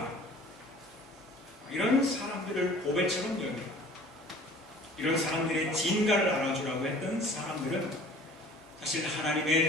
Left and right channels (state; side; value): normal; both; correlation 0.48